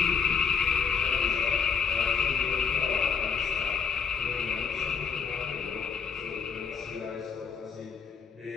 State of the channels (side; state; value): right; quieter; 6.2 dB